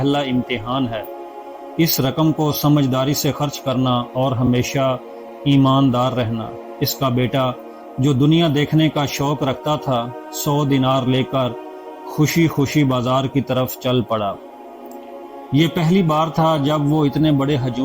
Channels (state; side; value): identical; both; correlation 1.00